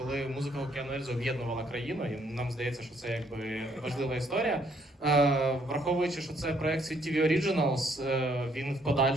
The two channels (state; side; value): normal; both; correlation 0.68